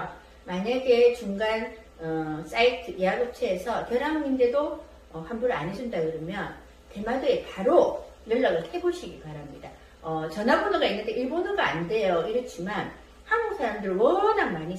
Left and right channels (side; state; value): both; identical; correlation 1.00